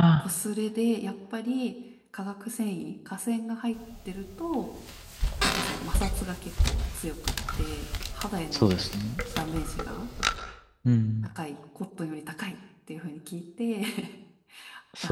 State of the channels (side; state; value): both; identical; correlation 1.00